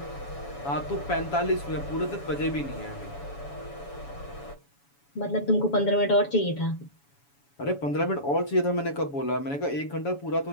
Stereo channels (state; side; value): late; right; 7.1 ms